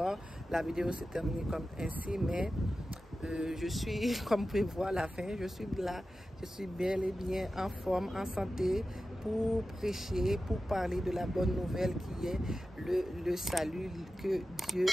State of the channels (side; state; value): both; normal; correlation 0.94